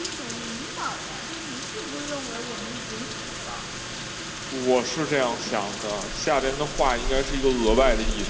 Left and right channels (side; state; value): both; identical; correlation 1.00